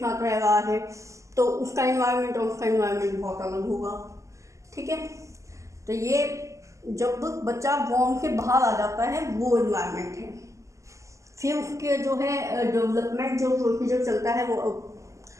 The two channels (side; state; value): left; late; 0.15 ms